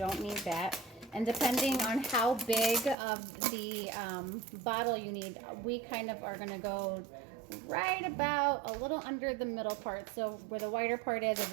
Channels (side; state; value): left; drops out; at 3.0 s